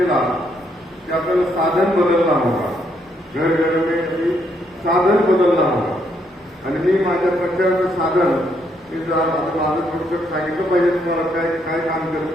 की आपल्याला साधन बदलणं होता, घरघरमध्ये साधन बदलणं होता. आणि मी माझ्या प्रचाराचं साधन मी जर माझं थोडक्यात सांगितलं पाहिजे तुम्हाला काय काय काम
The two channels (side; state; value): both; normal; correlation 0.74